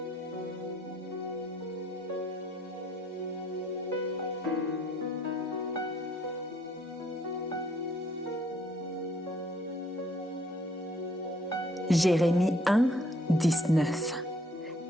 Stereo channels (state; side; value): normal; both; correlation 0.64